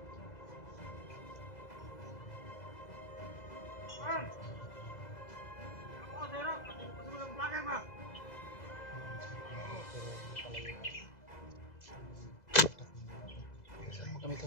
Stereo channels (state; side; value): late; right; 2.0 ms